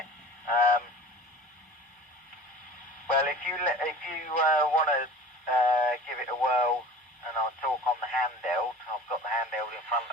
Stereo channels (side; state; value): both; normal; correlation 0.41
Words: Well, if you want to give it a whirl, and I'll talk on the handheld. I've got the handheld in front